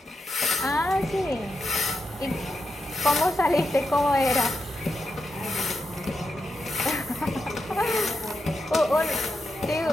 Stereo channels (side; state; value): both; normal; correlation 0.86